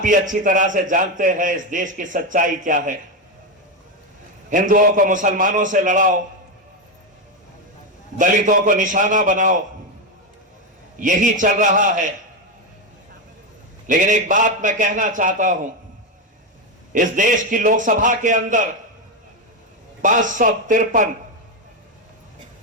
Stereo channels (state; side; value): normal; both; correlation 0.09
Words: अच्छी तरह से जानते हैं इस देश की सच्चाई क्या है। हिंदुओं को मुसलमानों से लड़ाओ, दलितों को निशाना बनाओ, यही चल रहा है। लेकिन एक बात मैं कहना चाहता हूं, इस देश की लोकसभा के अंदर 553